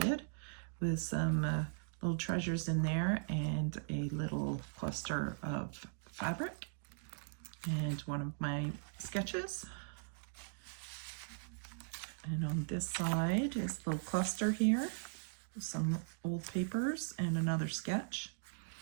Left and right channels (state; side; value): silent; left; digital silence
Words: with some little treasures in there and a little cluster of fabric and one of my sketches. And on this side is a little cluster here, some old papers and another sketch.